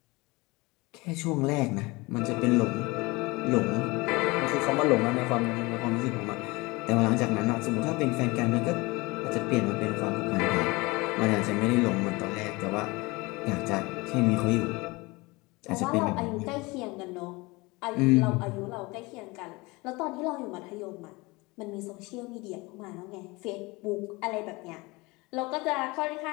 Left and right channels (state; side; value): quieter; right; 24.0 dB